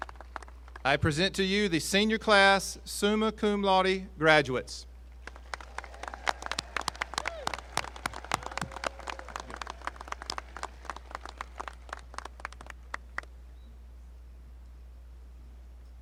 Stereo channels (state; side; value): identical; both; correlation 1.00